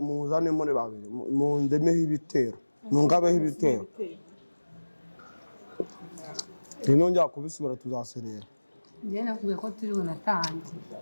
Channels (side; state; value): both; inverted; correlation -1.00